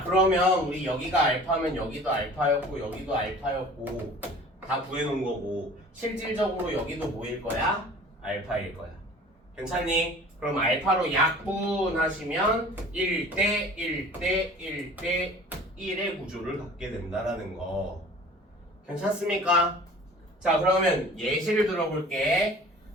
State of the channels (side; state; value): both; normal; correlation 0.45